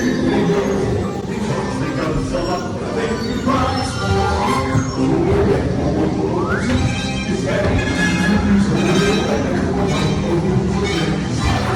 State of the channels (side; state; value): both; identical; correlation 1.00